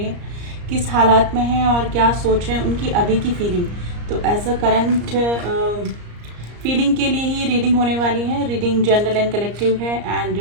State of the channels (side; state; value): left; late; 34 ms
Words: है, किस हालात में हैं और क्या सोच रहे हैं, उनकी अभी की फीलिंग। तो एज अ करंट फीलिंग के लिए ही रीडिंग होने वाली है। रीडिंग जनरल एंड कलेक्टिव है